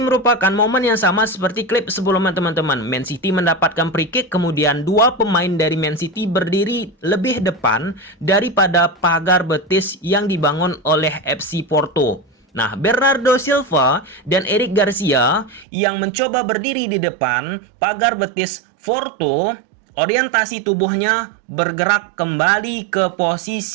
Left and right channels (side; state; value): left; drops out; at 15.7 s